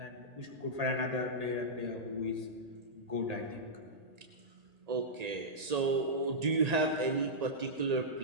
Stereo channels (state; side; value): late; left; 1.8 ms